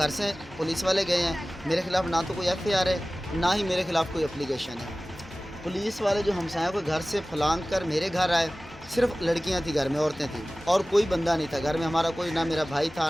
से पुलिस वाले गए हैं, मेरे खिलाफ ना तो कोई FIR है ना ही मेरे खिलाफ कोई एप्लीकेशन है। पुलिस वाले जो हम साहब को घर से फलांग कर मेरे घर आए, सिर्फ लड़कियां थी घर में, औरतें थी और कोई बंदा नहीं था घर में। हमारा कोई, ना मेरा भाई था,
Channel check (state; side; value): noise; left; hum, 21 dB below the sound